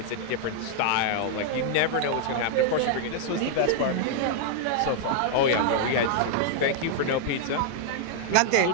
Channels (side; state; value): both; different; correlation 0.00